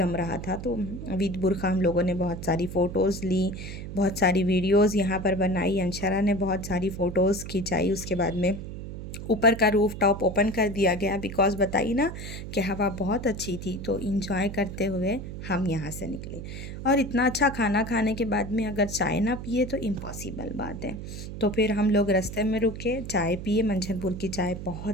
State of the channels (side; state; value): right; noise; hum, 9 dB below the sound